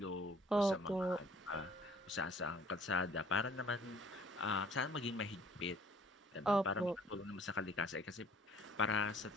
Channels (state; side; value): normal; both; correlation 0.55